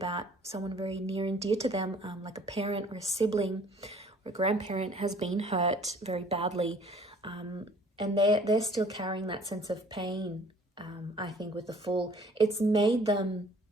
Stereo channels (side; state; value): both; normal; correlation 0.54